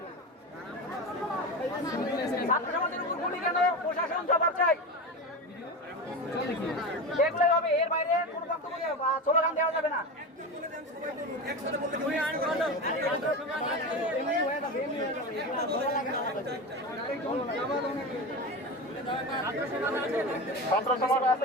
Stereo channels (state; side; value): normal; both; correlation 0.23